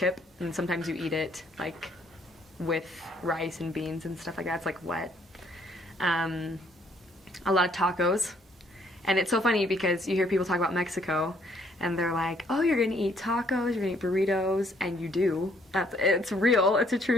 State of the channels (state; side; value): normal; both; correlation 0.66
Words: and sometimes you eat it like with rice and beans and stuff like that. It's like wet. A lot of tacos. And it's so funny because you hear people talk about Mexico, and they're like, oh, you're gonna eat tacos, you're gonna eat burritos, and you do. It's real, it's a